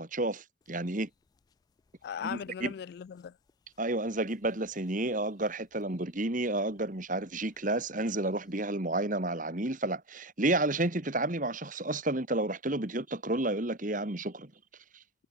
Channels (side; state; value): both; normal; correlation 0.21